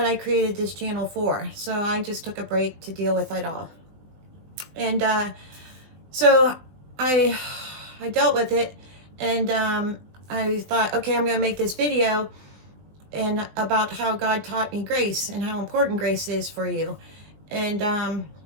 I created this channel for. So I just took a break to deal with it all. And so I dealt with it, and I thought, okay, I'm going to make this video and about how God taught me grace and how important grace is for you. And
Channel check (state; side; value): late; left; 20 ms